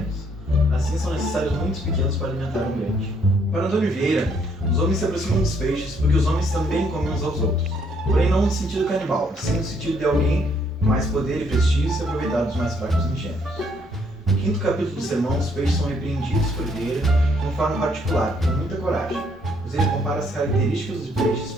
Assim, são necessários muitos pequenos para alimentar um grande. Para Antônio Vieira, os homens se aproximam dos peixes porque os homens também comem uns aos outros, porém não no sentido canibal, sim no sentido de alguém com mais poder e prestígio se aproveitar dos mais fracos e ingênuos. No quinto capítulo do sermão, os peixes são repreendidos por Vieira de uma forma particular, com muita coragem, pois ele compara as características de peixes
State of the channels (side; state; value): both; normal; correlation 0.68